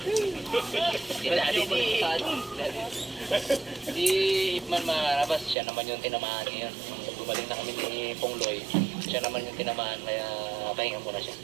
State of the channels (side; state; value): left; drops out; at 5.6 s